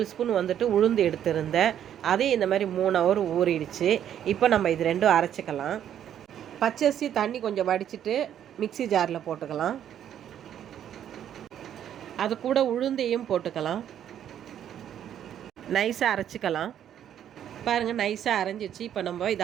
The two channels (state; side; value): quieter; left; 10.1 dB